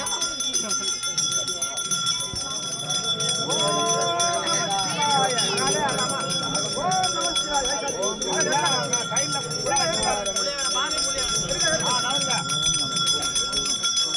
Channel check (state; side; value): identical; both; correlation 1.00